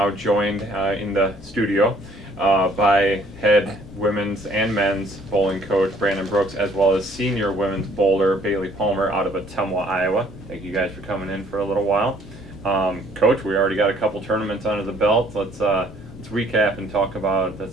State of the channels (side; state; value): both; normal; correlation 0.61